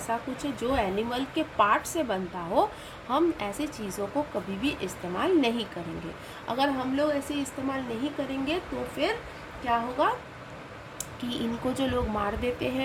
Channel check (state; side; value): identical; both; correlation 1.00